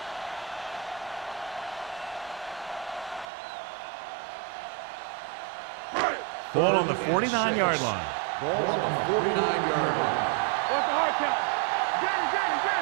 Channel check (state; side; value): drops out; left; at 3.2 s